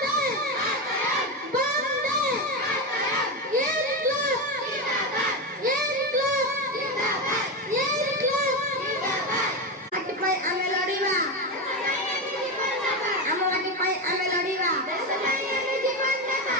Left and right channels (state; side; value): normal; both; correlation 0.15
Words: बंदे इनकलाब इनकलाब इनकलाब आके पाई आमे लड़ीबा आम माटी पाई आमे लड़ीबा